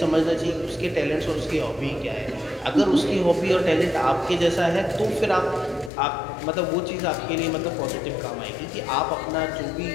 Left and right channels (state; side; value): drops out; right; at 5.9 s